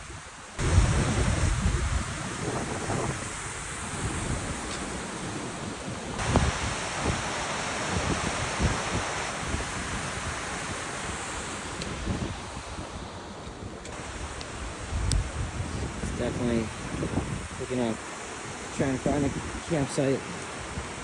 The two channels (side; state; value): both; identical; correlation 1.00